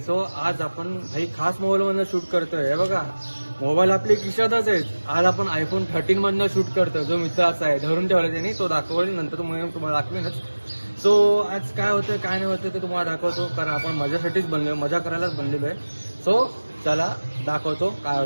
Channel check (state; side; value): inverted; both; correlation -1.00